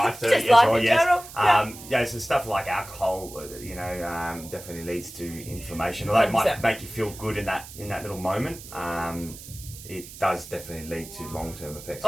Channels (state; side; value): noise; right; hiss, 15 dB below the sound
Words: too, Just as life well, in yes. general. Yeah, so stuff like alcohol, definitely leads to inflammation. Although it might 100%. make you feel good in that little moment, it does definitely lead to long-term effects.